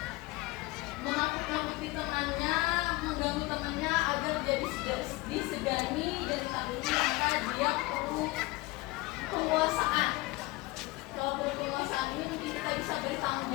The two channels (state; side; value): quieter; right; 21.7 dB